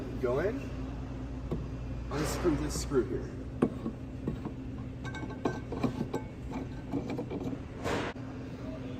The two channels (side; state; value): both; identical; correlation 1.00